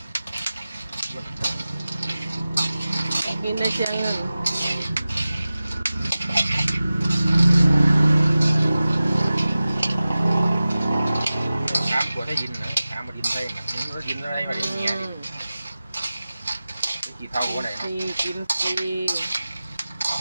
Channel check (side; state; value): both; inverted; correlation -0.96